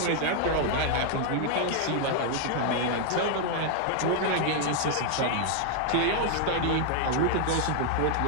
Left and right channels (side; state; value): both; different; correlation 0.00